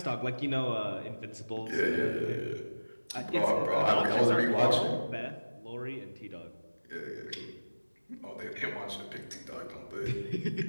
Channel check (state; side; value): inverted; both; correlation -1.00